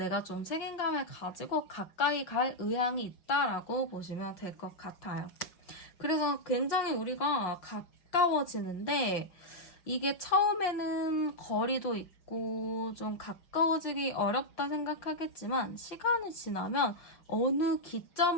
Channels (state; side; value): late; right; 5.5 ms